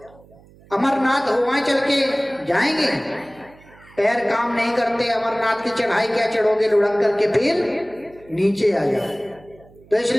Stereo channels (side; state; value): right; noise; hum, 26 dB below the sound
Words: अमरनाथ हो वहां चल के जाएंगे। पैर काम नहीं करते, अमरनाथ की चढ़ाई क्या चढ़ोगे, लुढ़क करके फिर नीचे आ जाओ। तो